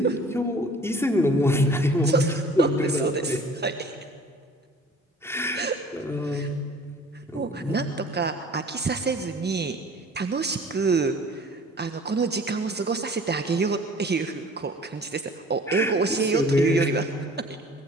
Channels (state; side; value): normal; both; correlation 0.48